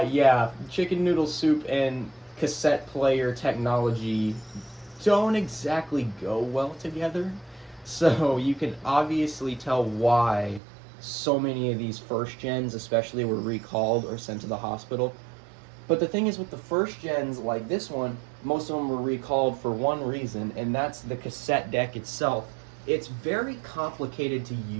chicken noodle soup and cassette player technology don't exactly go well together. So you can obviously tell why so many of these first gens especially were recalled or sent to the hospital. But the thing is, with the first gens like this one, most of them were recalled for one reason, and that's the cassette deck itself. It's very complicated to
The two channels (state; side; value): drops out; left; at 10.6 s